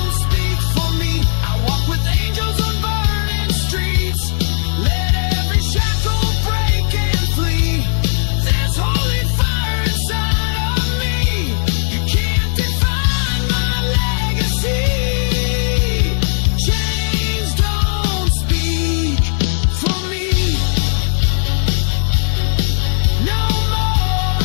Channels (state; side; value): silent; right; digital silence